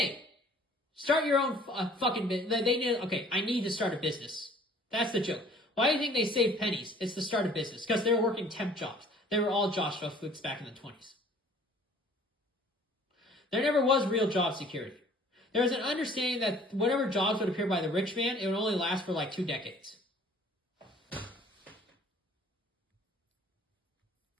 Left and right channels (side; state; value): both; normal; correlation 0.53